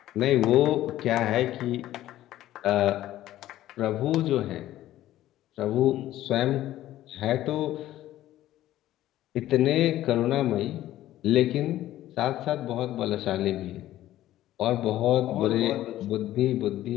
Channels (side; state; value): right; quieter; 14.0 dB